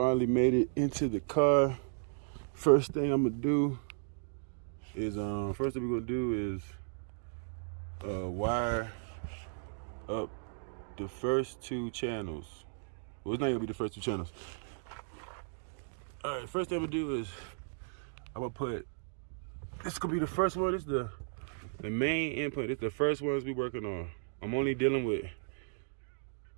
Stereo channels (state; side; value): silent; left; digital silence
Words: made it into the car. First thing I'm gonna do is wire up the first two channels. Well, it's not gonna be the first two channels. All right, first thing I'm gonna do is I'm gonna put, this gonna be the first one. This is the main input. It's the first ones we working on. I'm only dealing with